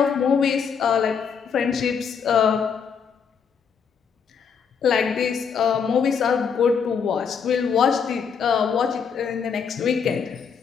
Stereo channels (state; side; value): quieter; right; 6.6 dB